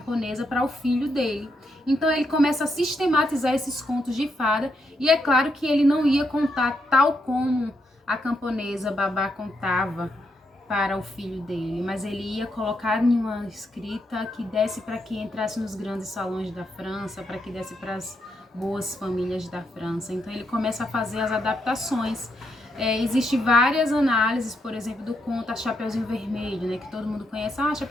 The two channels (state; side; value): normal; both; correlation 0.79